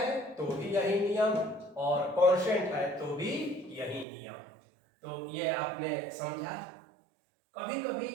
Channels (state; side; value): drops out; left; at 4.0 s